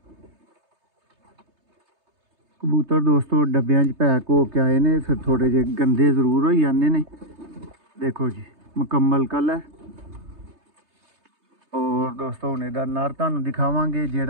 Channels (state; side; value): late; left; 3.3 ms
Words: कबूतर दोस्तों डब्बियां पैक हो के आए ने, फिर थोड़े जे गंदे जरूर हो जाते ने। देखो जी मुकम्मल कलर। और दोस्तों हूँ इहदा नर तुहानूं दिखावांगे